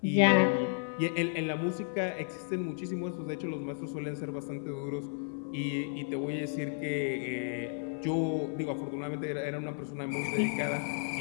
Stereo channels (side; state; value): right; silent; 56 dB below the other